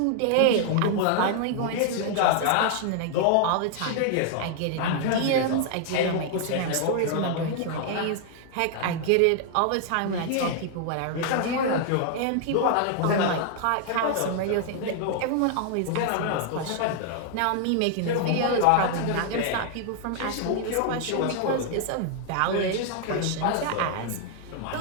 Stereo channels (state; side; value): different; both; correlation 0.00